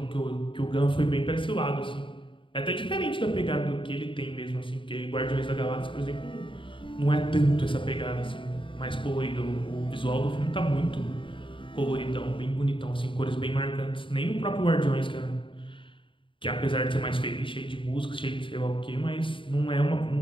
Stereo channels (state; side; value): late; right; 0.25 ms